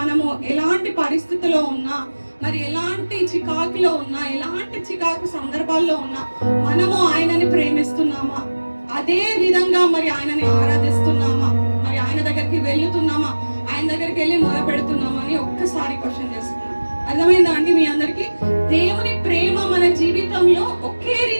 ఎలాంటి పరిస్థితిలో ఉన్నా, మరి ఎలాంటి చికాకులో ఉన్నా, ఎలాంటి చికాకు సందర్భాల్లో ఉన్నా మనము ఆయనని ప్రేమిస్తున్నామా, అదే విధంగా మరి ఆయనని ఆరాధిస్తున్నామా, మరి ఆయన దగ్గరికి వెళ్తున్నామా, ఆయన దగ్గరికి వెళ్ళి మొర పెడుతున్నామా అని ఒక్కసారి క్వశ్చన్ చేస్తున్నాం. అర్థమైందా అండి మీ అందరికి? దేవుని ప్రేమ మన జీవితంలో ఒకే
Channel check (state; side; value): inverted; both; correlation -1.00